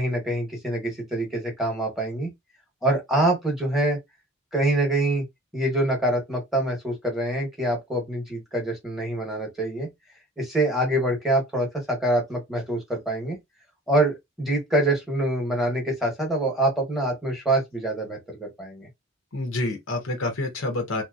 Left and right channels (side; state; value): both; normal; correlation 0.43